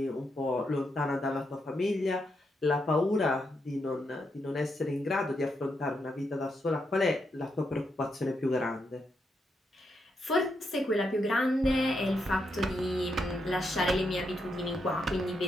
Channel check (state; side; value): normal; both; correlation 0.81